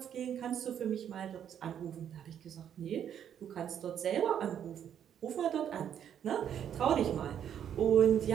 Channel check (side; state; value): left; quieter; 9.3 dB